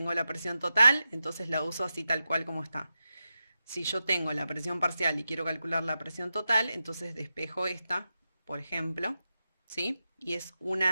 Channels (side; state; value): both; inverted; correlation -0.90